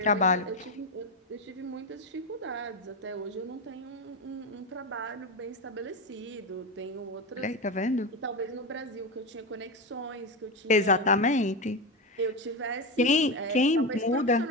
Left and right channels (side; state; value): both; normal; correlation 0.15